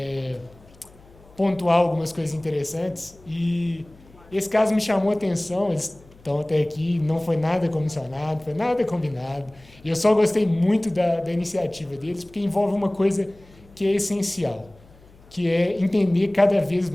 pontuar algumas coisas interessantes, e esse caso me chamou a atenção. Eles estão até aqui, não foi nada comissionado, foi nada combinado, e eu só gostei muito da iniciativa deles, porque envolve uma coisa que é essencial, que é entender cada vez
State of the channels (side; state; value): left; noise; hum, 26 dB below the sound